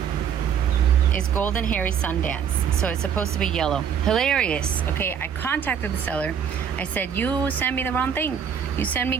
is Golden Hairy Sundance. So it's supposed to be yellow. Hilarious. Okay, I contacted the seller. I said, you sent me the wrong thing. You sent me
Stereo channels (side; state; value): left; quieter; 7.9 dB